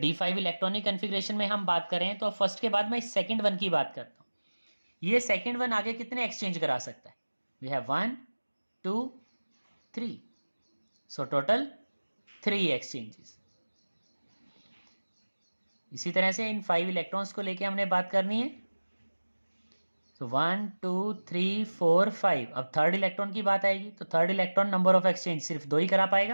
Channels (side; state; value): both; inverted; correlation -1.00